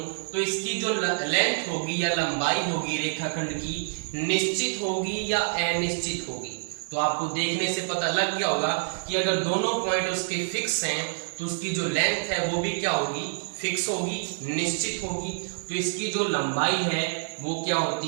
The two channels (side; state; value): left; silent; digital silence